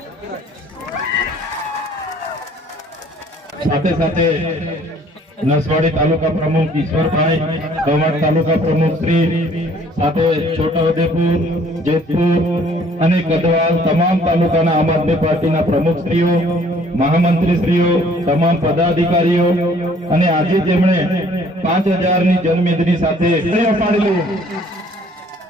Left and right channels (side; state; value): both; normal; correlation 0.58